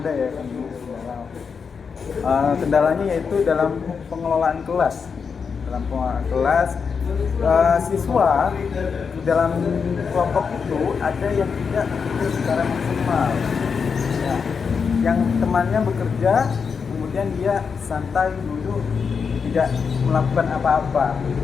ya kendalanya yaitu dalam pengelolaan kelas. Dalam pengelolaan kelas, siswa di dalam kelompok itu ada yang tidak bekerja secara maksimal. Ya, yang temannya bekerja, kemudian kemudian dia santai duduk tidak melakukan apa-apa.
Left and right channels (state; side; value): quieter; right; 5.9 dB